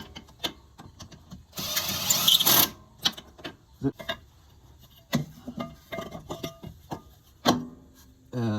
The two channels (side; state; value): both; identical; correlation 1.00